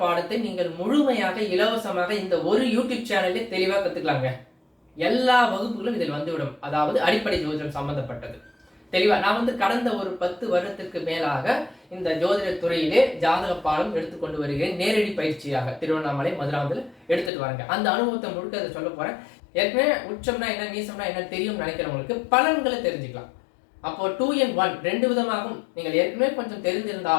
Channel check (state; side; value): drops out; right; at 17.3 s